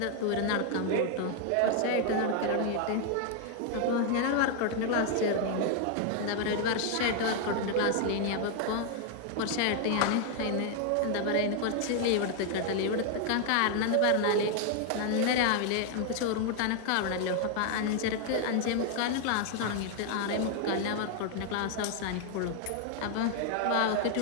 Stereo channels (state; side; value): different; both; correlation 0.00